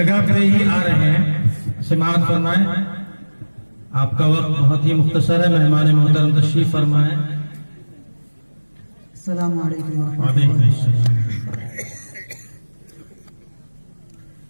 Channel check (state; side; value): inverted; both; correlation -1.00